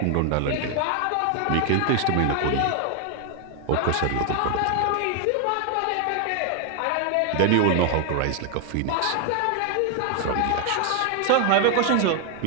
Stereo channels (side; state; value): both; different; correlation 0.01